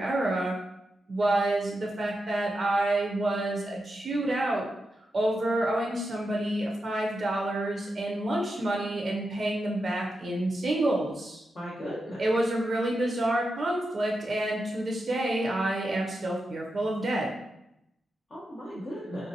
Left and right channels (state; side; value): normal; both; correlation 0.88